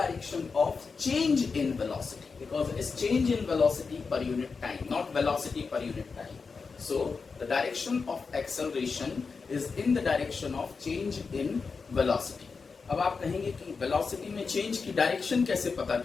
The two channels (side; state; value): right; quieter; 4.9 dB